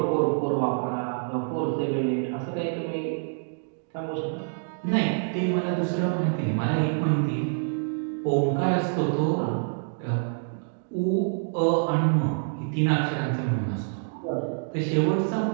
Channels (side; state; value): left; silent; digital silence